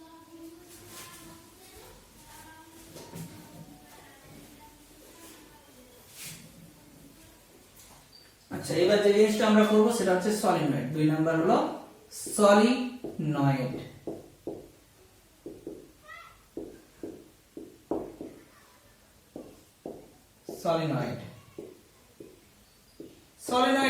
আচ্ছা, এবার যে জিনিসটা আমরা করব সেটা হচ্ছে সলিনয়েড। 2 নাম্বার হলো সলিনয়েড। সলিনয়েড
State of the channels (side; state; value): both; identical; correlation 1.00